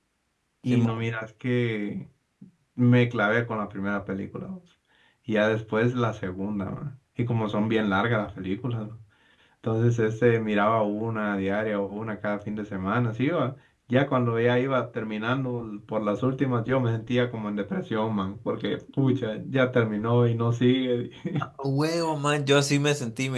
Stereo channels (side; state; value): both; identical; correlation 1.00